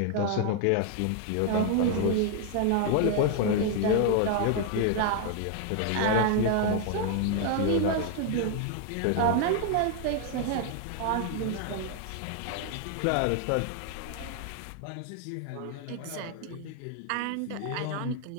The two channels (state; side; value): different; both; correlation 0.00